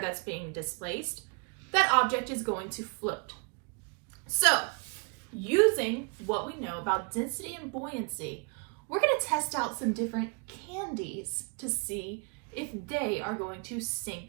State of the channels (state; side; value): quieter; left; 35.5 dB